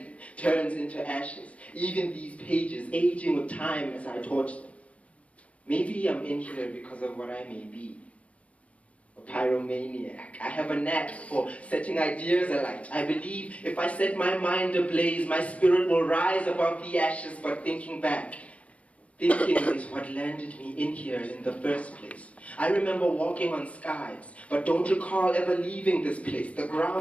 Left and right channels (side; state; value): right; late; 0.065 ms